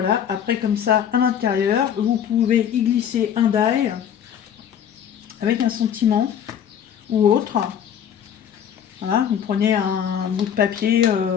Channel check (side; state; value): right; quieter; 9.0 dB